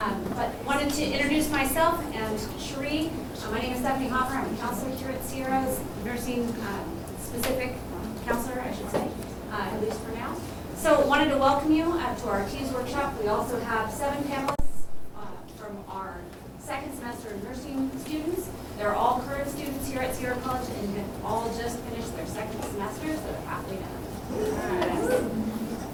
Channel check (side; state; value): both; identical; correlation 1.00